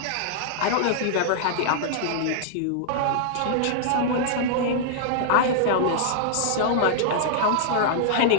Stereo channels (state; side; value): different; both; correlation -0.01